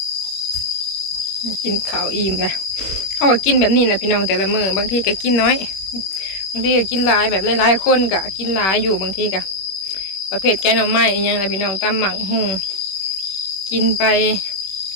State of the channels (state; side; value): late; right; 21 ms